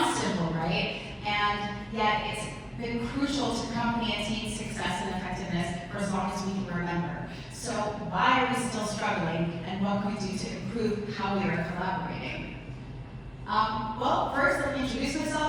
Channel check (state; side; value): identical; both; correlation 1.00